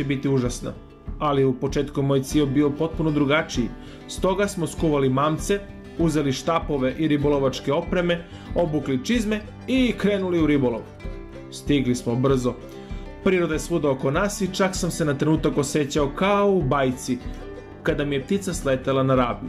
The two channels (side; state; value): both; identical; correlation 1.00